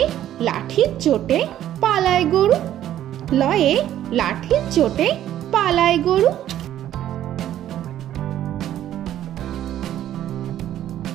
লাঠির চোটে পালায় গরু। লয়ে লাঠির চোটে পালায় গরু।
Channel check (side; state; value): left; quieter; 11.9 dB